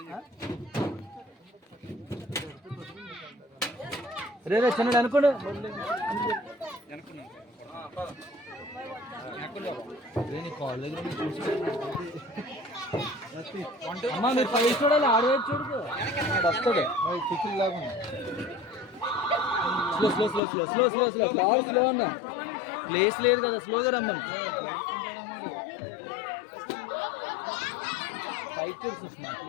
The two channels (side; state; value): right; drops out; at 20.4 s